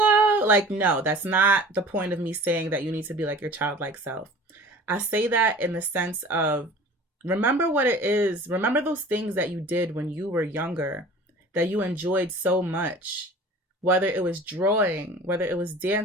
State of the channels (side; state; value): both; normal; correlation 0.43